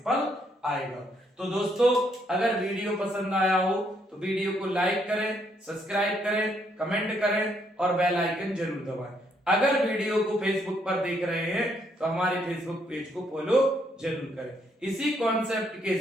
फल आएगा। तो दोस्तों अगर वीडियो पसंद आया हो तो वीडियो को लाइक करें, सब्सक्राइब करें, कमेंट करें और बेल आइकन जरूर दबाएं। अगर वीडियो को फेसबुक पर देख रहे हैं तो हमारे फेसबुक पेज को फॉलो जरूर करें। इसी कॉन्सेप्ट के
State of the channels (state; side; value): normal; both; correlation 0.72